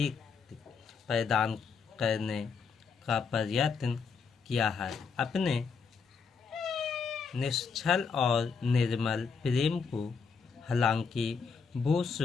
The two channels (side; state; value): right; quieter; 5.5 dB